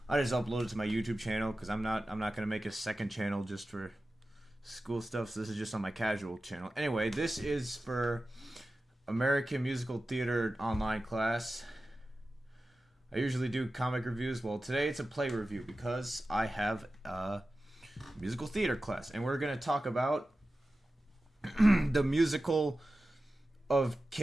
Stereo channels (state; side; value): normal; both; correlation 0.94